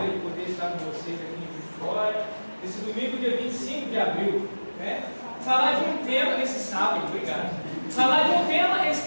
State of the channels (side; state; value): both; inverted; correlation -1.00